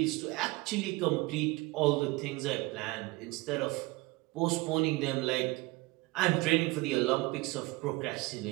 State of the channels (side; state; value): left; quieter; 22.8 dB